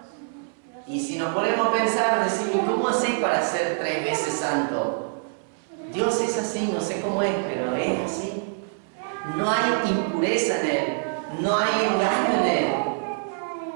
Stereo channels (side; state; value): left; silent; 62 dB below the other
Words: Y si nos ponemos a pensar, decimos: ¿cómo así para ser 3 veces santo? Dios es así, no sé cómo es, pero es así. No hay impureza en Él, no hay engaño en Él.